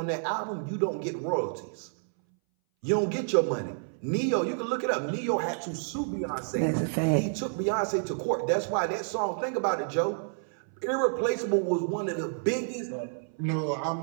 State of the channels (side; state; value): left; silent; 58 dB below the other